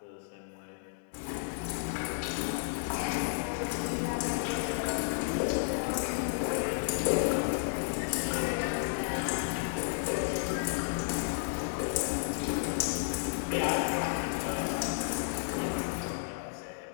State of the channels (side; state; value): right; silent; digital silence